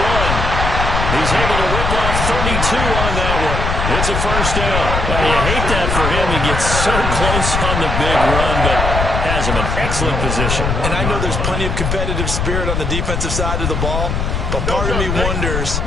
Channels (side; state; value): left; noise; rumble, 1 dB below the sound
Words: He's able to rip off 32 on that one. It's a first down. Well, you hate that for him. He gets so close on the big run, but has him in excellent position. And I know there's plenty of competitive spirit on the defensive side of the ball, but part of me wonders